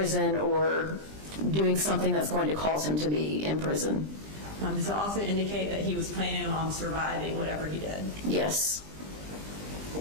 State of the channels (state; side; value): late; left; 20 ms